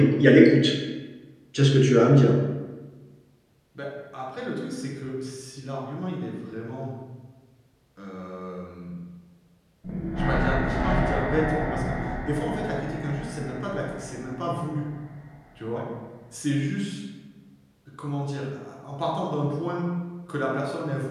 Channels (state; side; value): identical; both; correlation 1.00